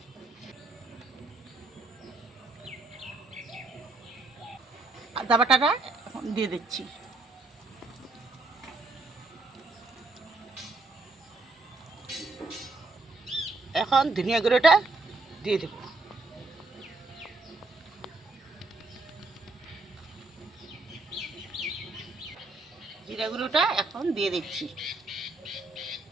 আদা বাটাটা এখন দিয়ে দিচ্ছি। এখন ধনিয়া গুঁড়োটা দিয়ে দেব। জিরা গুঁড়োটা এখন দিয়ে দিচ্ছি।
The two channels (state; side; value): quieter; left; 3.3 dB